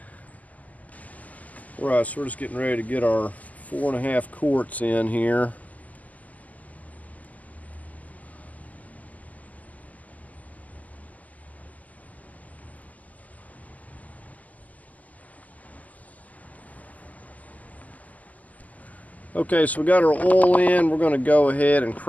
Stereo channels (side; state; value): right; late; 0.076 ms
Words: Alright, so we're just getting ready to get our 4.5 quarts in here. Okay, so we got our oil in. We're going to go ahead and